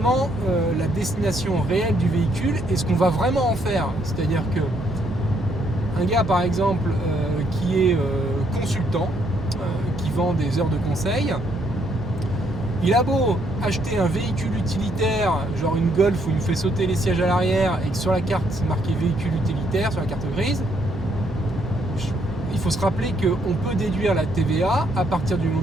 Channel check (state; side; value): normal; both; correlation 0.71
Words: la destination réelle du véhicule et ce qu'on va vraiment en faire. C'est-à-dire que un gars par exemple qui est consultant, qui vend des heures de conseil, il a beau acheter un véhicule utilitaire, genre une Golf où il me fait sauter les sièges à l'arrière et que sur la carte c'est marqué véhicule utilitaire, sur la carte grise, il faut se rappeler qu'on peut déduire la TVA à partir du